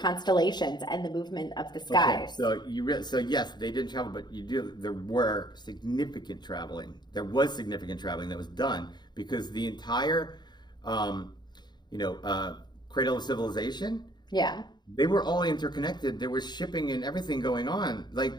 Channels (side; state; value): right; late; 0.21 ms